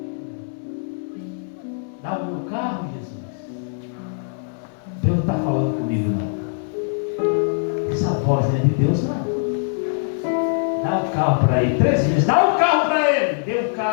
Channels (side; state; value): right; silent; 64 dB below the other